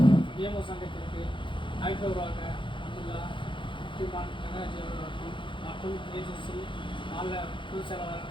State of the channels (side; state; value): right; late; 0.24 ms